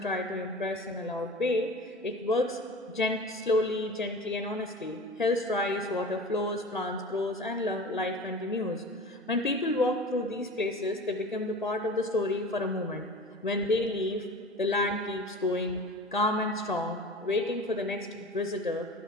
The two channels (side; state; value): both; normal; correlation 0.37